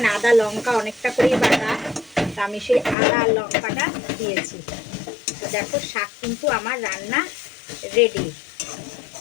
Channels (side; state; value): right; drops out; at 3.0 s